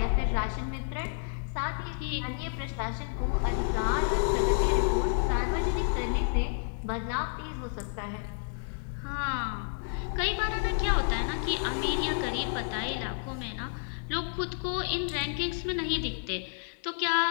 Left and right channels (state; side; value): silent; right; 58 dB below the other